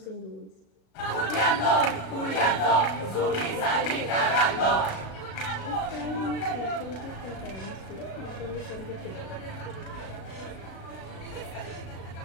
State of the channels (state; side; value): late; right; 36 ms